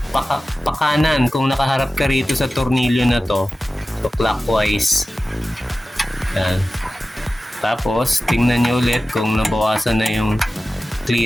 pakanan. Kung nakaharap ka rito sa tornilyo na to, so clockwise. Ayan. Tapos, tingnan nyo ulit kung nabawasan na yung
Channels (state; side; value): normal; both; correlation 0.95